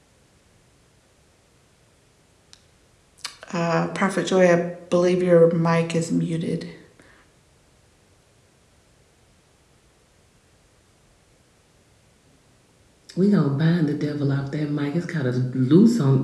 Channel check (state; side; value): identical; both; correlation 1.00